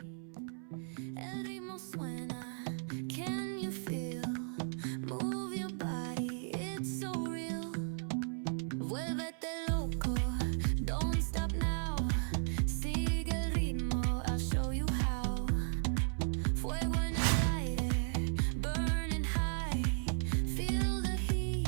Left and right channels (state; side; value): silent; left; 54 dB below the other